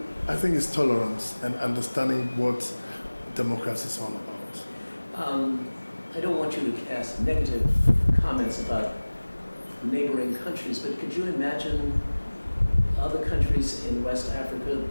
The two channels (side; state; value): both; inverted; correlation -1.00